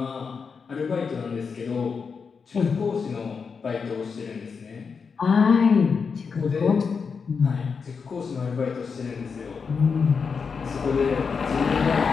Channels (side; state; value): right; quieter; 5.5 dB